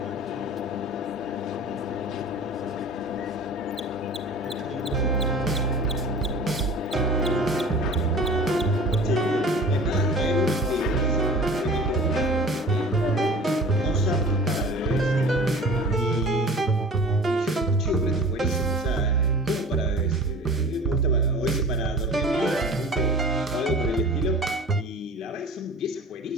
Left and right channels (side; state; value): both; normal; correlation 0.42